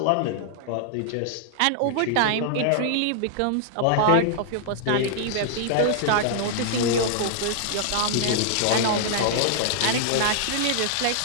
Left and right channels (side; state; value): both; different; correlation -0.01